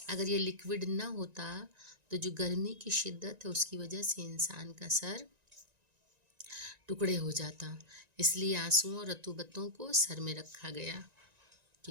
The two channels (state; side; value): late; left; 1.9 ms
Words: اگر یہ لکوڈ نہ ہوتا تو جو گرمی کی شدت ہے اس کی وجہ سے انسان کا سر ٹکڑے ہو جاتا۔ اس لیے آنسوؤں اور رطوبتوں کو سر میں رکھا گیا